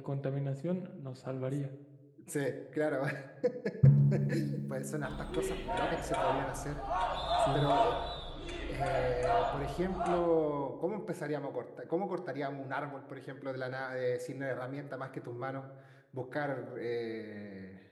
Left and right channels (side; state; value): both; identical; correlation 1.00